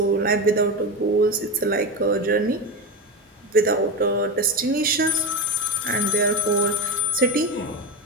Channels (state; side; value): normal; both; correlation 0.19